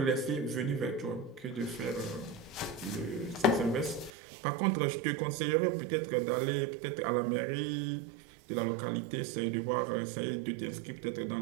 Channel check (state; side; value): drops out; left; at 4.1 s